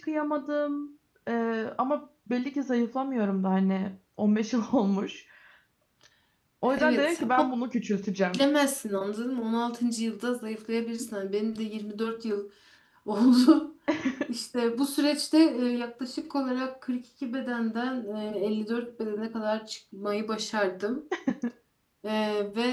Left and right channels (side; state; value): both; identical; correlation 1.00